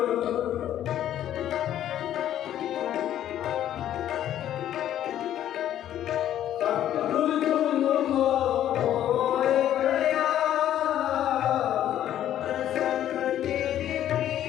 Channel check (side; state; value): right; quieter; 11.5 dB